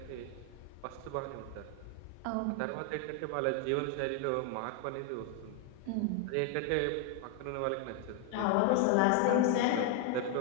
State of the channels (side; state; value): both; different; correlation 0.01